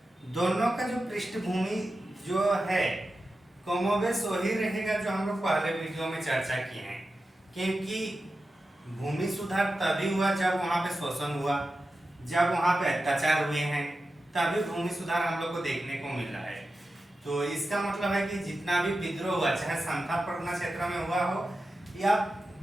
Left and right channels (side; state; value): both; normal; correlation 0.92